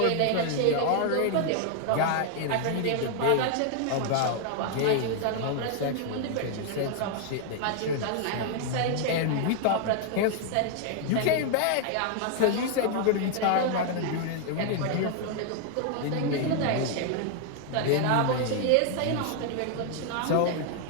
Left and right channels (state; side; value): different; both; correlation 0.00